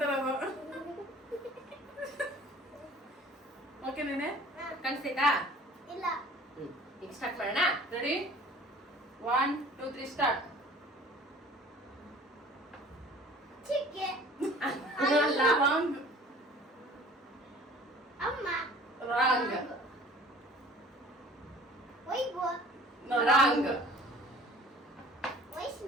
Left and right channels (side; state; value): both; normal; correlation 0.49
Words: ಓಕೆ ನೀನೆ ಕಾಣಿಸ್ತೈತಾ? ಇಲ್ಲ ಈಗ ಸ್ಟಾರ್ಟ್ ಮಾಡೋಣ. Ready 1 2 3 start. ಚಿಕ್ಕೆ ರಾಂಗ್. ಅಮ್ಮ wrong. Vaibhav wrong.